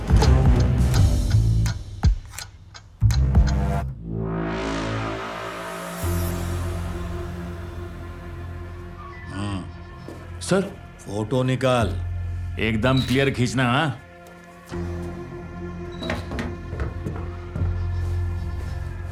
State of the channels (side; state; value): both; identical; correlation 1.00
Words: सर फोटो निकाल, एकदम क्लियर खींचना। हाँ,